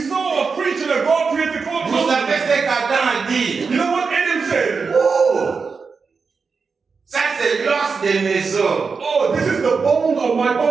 saw a creature that God created called Vous man. savez ce qu'Adam a dit? You know what Adam said? Oh! Ça c'est l'os de mes os, Oh, this is the bone of my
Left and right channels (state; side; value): quieter; left; 5.0 dB